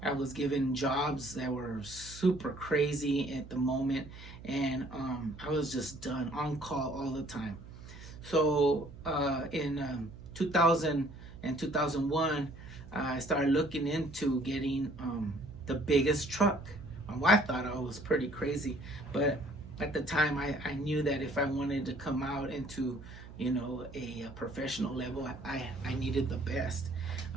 I was given jobs that were super crazy at the moment, and I was just done on call all the time. So in 2000 and 2001, I started looking into getting the biggest truck. My wife thought I was pretty crazy, but at the time I knew that if I wanted to come out into a professional level, I needed the best.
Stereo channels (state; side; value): noise; right; hum, 15 dB below the sound